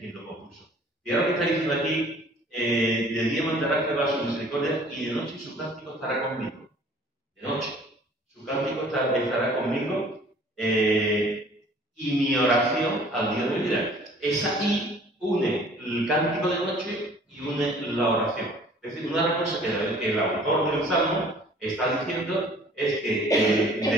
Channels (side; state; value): both; normal; correlation 0.52